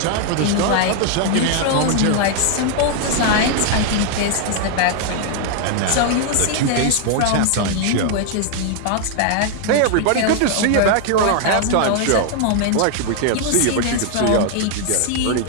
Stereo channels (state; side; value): different; both; correlation 0.00